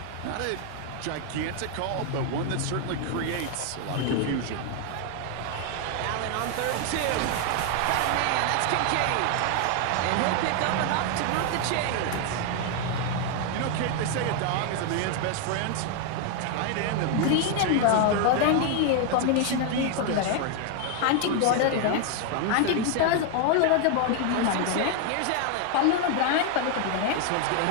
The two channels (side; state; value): both; different; correlation 0.00